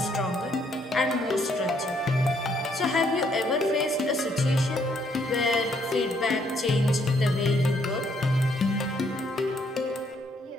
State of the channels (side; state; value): both; normal; correlation 0.70